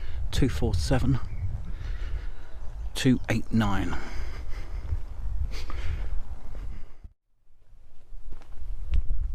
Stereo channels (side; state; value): both; identical; correlation 1.00